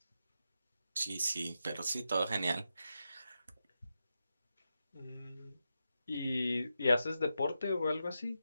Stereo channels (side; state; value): both; inverted; correlation -0.88